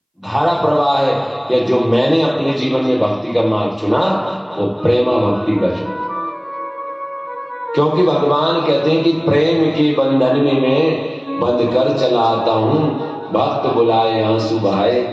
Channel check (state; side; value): identical; both; correlation 1.00